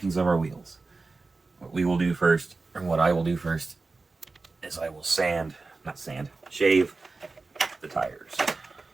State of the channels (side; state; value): left; quieter; 3.7 dB